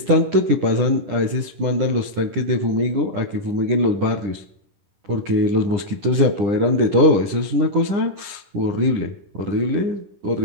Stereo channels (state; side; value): late; left; 10 ms